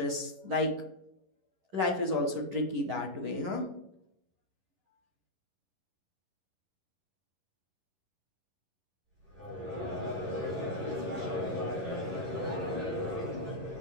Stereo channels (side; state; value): left; late; 11 ms